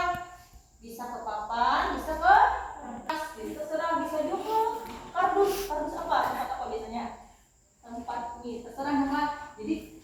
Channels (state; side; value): identical; both; correlation 1.00